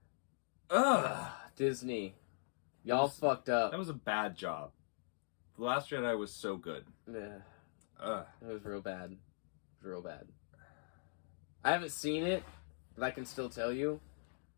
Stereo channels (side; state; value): right; silent; digital silence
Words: Ugh. Disney. Y'all fucked up. That was a bad job. The Last Jedi was so good. Yeah. It was real bad. It was real bad. I haven't seen it, but I can still tell you.